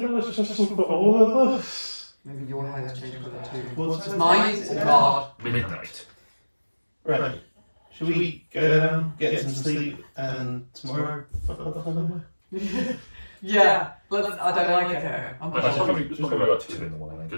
that was just for all of us. Maybe your hair's changed colour too. What's Mine? Oh God. Midnight. Right. Shall we go down, get some sleep, and tomorrow fuck up the whole Yeah, I don't like it here. I'm It's probably about 2 in the morning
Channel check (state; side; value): inverted; both; correlation -1.00